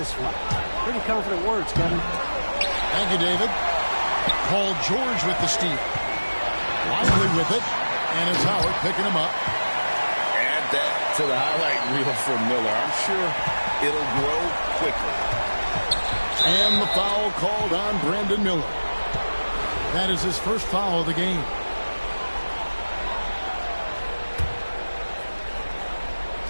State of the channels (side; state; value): both; inverted; correlation -1.00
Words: one. Pretty confident words, Kevin. Thank you, David. Paul George with the steal. Lively with it. And it's Howard picking him up. Add that to the highlight reel for Miller. I'm sure it'll grow quickly. And the foul called on Brandon Miller. That is his first foul of the game.